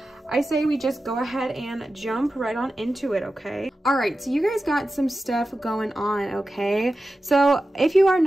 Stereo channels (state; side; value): normal; both; correlation 0.93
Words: I say we just go ahead and jump right on into it. Okay, all right, so you guys got some stuff going on. Okay, so if you are